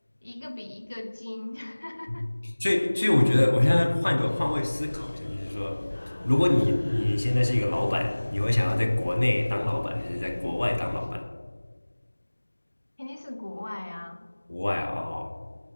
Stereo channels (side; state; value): both; inverted; correlation -1.00